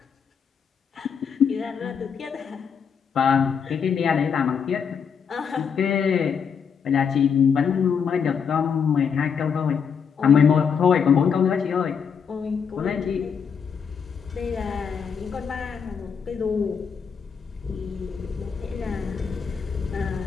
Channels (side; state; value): right; quieter; 6.7 dB